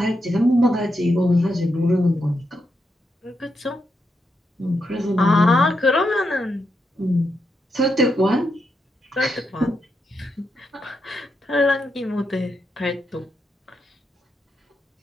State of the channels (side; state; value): both; normal; correlation 0.83